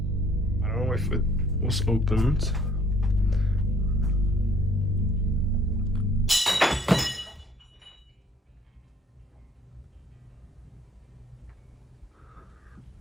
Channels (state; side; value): normal; both; correlation 0.59